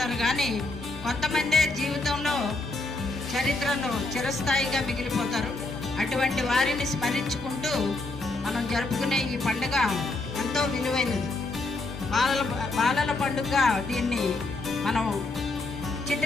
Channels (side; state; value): right; quieter; 3.1 dB